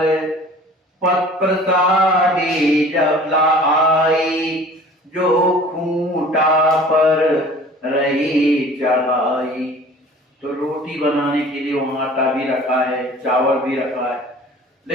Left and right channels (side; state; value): both; normal; correlation 0.46